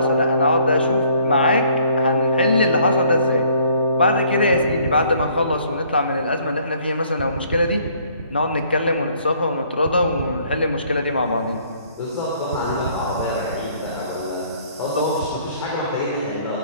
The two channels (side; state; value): both; inverted; correlation -0.61